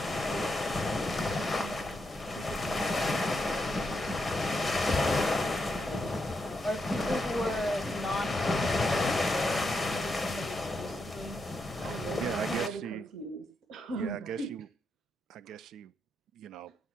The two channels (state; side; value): normal; both; correlation 0.83